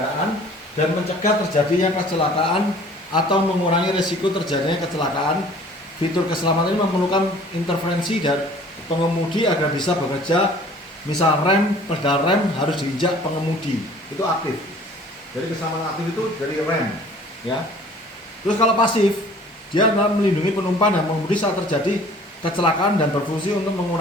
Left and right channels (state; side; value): normal; both; correlation 0.50